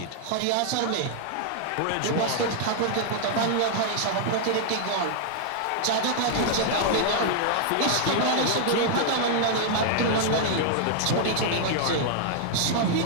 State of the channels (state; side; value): different; both; correlation 0.00